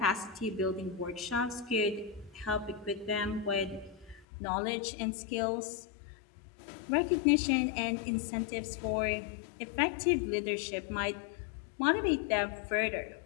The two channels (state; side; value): drops out; right; at 4.2 s